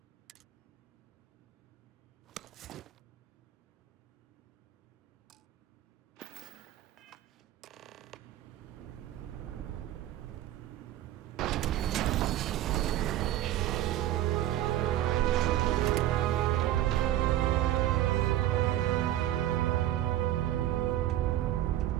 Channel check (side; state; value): left; quieter; 13.2 dB